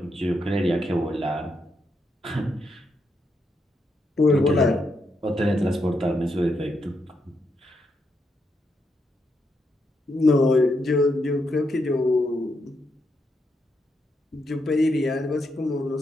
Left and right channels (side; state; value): both; normal; correlation 0.81